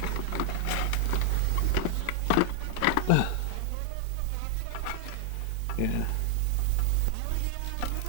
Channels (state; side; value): different; both; correlation 0.00